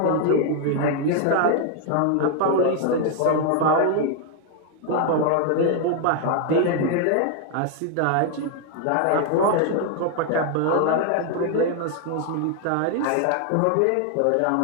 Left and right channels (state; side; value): different; both; correlation 0.00